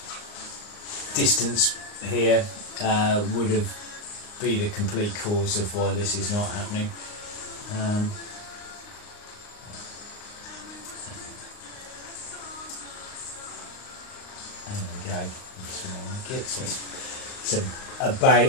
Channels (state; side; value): late; right; 39 ms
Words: distance here would have been the complete cause of why this is not happening. There we go. So it's